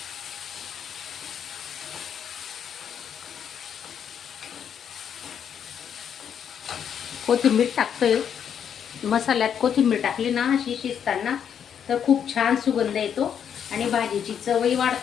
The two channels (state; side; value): quieter; right; 8.3 dB